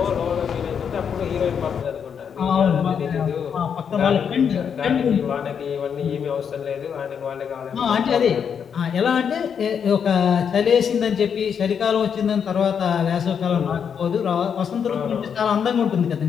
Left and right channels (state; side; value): quieter; right; 7.3 dB